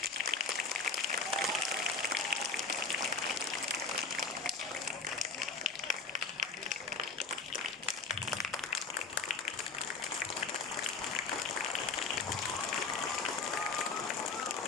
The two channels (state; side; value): quieter; right; 4.5 dB